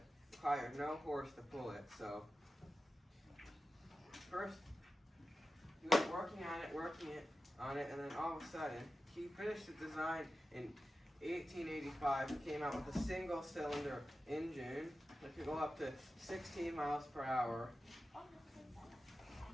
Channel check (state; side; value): normal; both; correlation 0.93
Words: requires no horse to pull it. So first he was working on it, and then all of a sudden, he finished the design in 1885. He came out with a single-cylinder engine that could go up to 16 miles per hour.